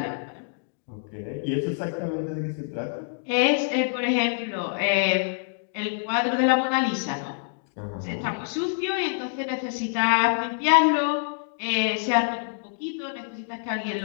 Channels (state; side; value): silent; right; digital silence